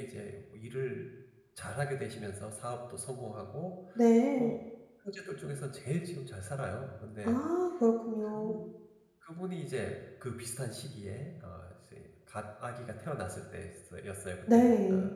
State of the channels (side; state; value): both; identical; correlation 1.00